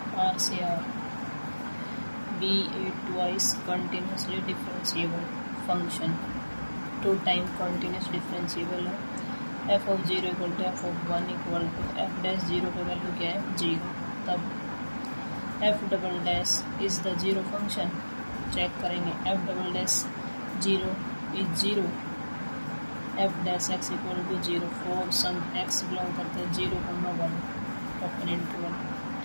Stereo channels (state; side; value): inverted; both; correlation -1.00